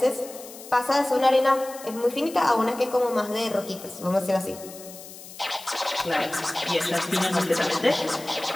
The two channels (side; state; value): left; noise; hiss, 16 dB below the sound